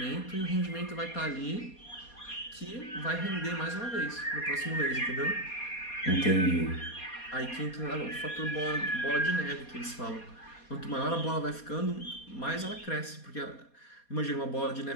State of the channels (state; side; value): late; right; 4.2 ms